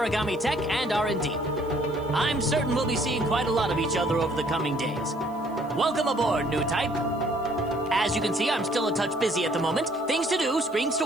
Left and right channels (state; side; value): noise; right; hiss, 28 dB below the sound